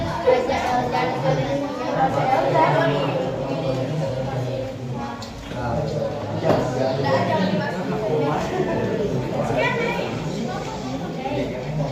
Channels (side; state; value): both; identical; correlation 1.00